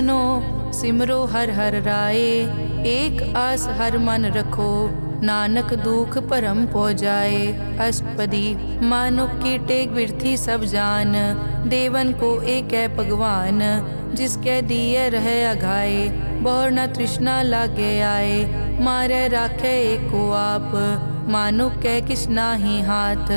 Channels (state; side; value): inverted; both; correlation -1.00